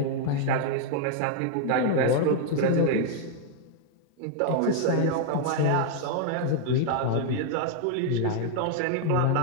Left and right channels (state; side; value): different; both; correlation 0.00